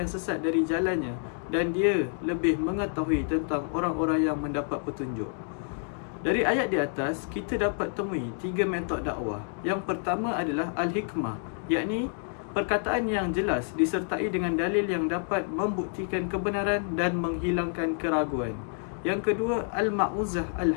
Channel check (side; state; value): right; silent; 59 dB below the other